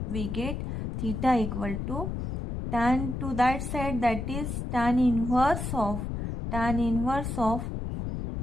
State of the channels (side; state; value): left; noise; rumble, 4 dB below the sound